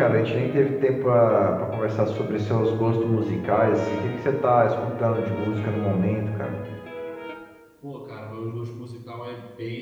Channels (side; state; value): both; identical; correlation 1.00